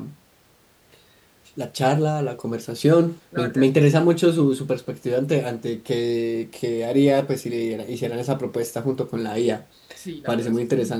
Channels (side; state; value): both; identical; correlation 1.00